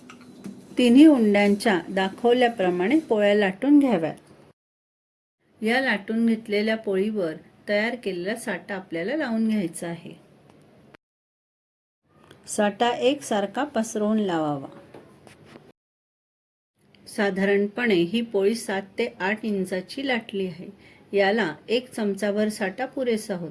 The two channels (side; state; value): both; identical; correlation 1.00